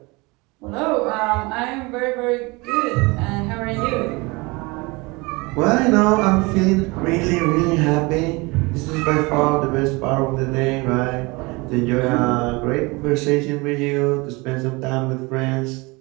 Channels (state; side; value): quieter; left; 25.4 dB